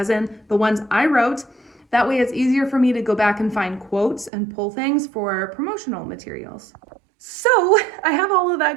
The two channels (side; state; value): left; drops out; at 4.3 s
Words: in the ones I wrote. That way it's easier for me to go back and find quotes and pull things for promotional materials. So I have all of